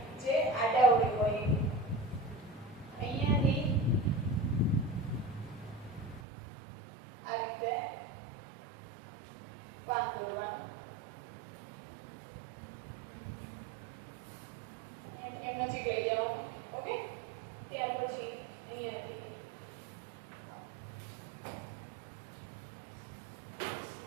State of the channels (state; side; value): drops out; left; at 6.2 s